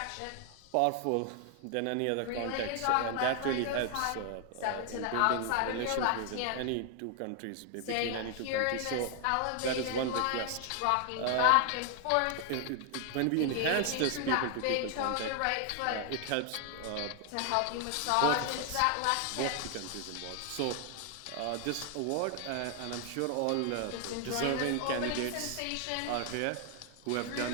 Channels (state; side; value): different; both; correlation 0.00